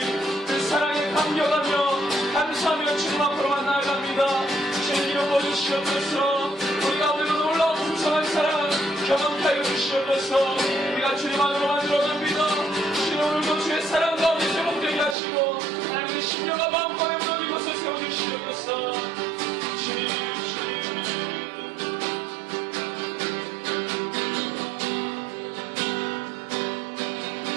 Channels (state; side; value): drops out; left; at 15.2 s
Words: 그 사랑에 감격하며 감사하며 주님 앞으로만 나아갑니다. 주님 이름 보여주시옵소서. 우리 가운데 그 놀라운 풍성한 사랑 경험케 하여 주시옵소서. 우리가 주님 안으로만 들어갑니다. 주님 오늘도 주의 사랑 가운데 회복되게 하시고 하나님의 심령과 마음과 무너진 것을 세워주시옵소서. 주님